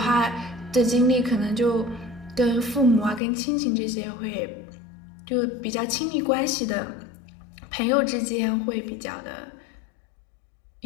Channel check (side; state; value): right; drops out; at 3.2 s